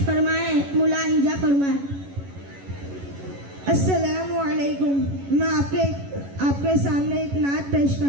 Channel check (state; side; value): late; left; 11 ms